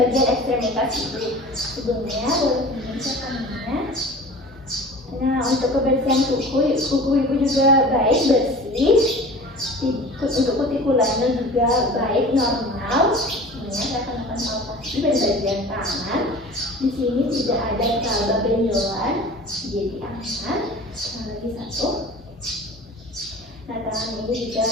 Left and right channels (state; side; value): normal; both; correlation 0.40